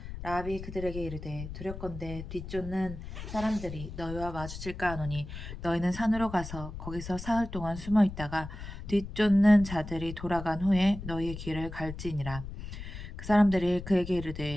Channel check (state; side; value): noise; left; rumble, 10 dB below the sound